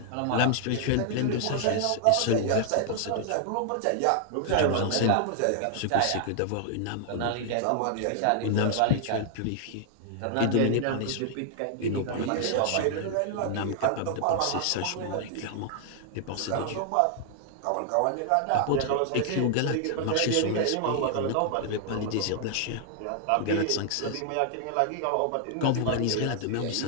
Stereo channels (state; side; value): different; both; correlation 0.00